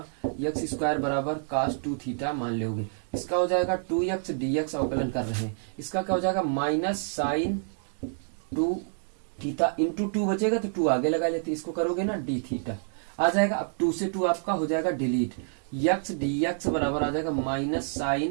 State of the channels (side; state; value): left; silent; digital silence